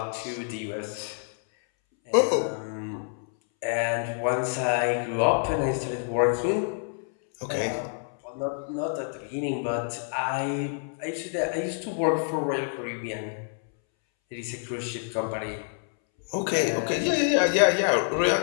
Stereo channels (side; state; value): right; silent; 60 dB below the other